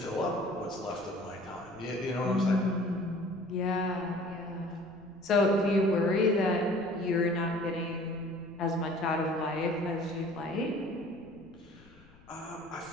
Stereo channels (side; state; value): left; noise; rumble, 25 dB below the sound